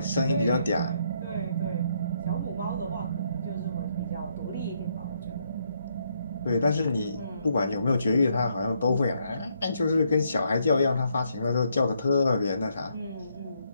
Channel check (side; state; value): both; inverted; correlation -0.74